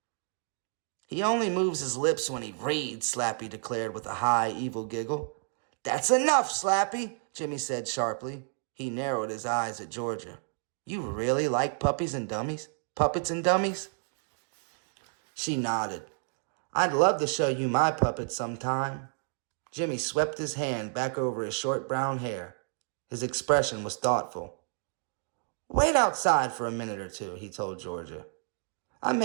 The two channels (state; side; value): silent; left; 57 dB below the other